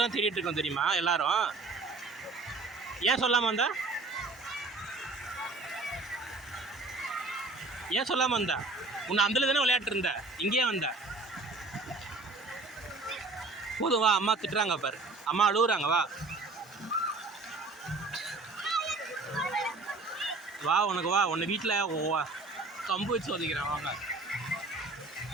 தேடிட்டு இருக்கோம் தெரியுமா எல்லாரும்? ஏன் சொல்லாமல் வந்தா? ஏன் சொல்லாமல் வந்தா? உன்னை அந்தல தானே விளையாட்டு இருந்த, இங்கேயே வந்த. போதும் வா, அம்மா திட்டுறாங்க பாரு, அம்மா அழுகுறாங்க, வா வா. உனக்கு வா, உன்னை வீட்டில் கம்பு வச்சு ஒதுக்கிறேன், வாங்க.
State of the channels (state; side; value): quieter; left; 3.5 dB